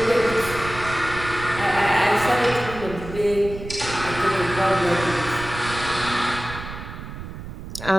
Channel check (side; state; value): right; noise; rumble, 11 dB below the sound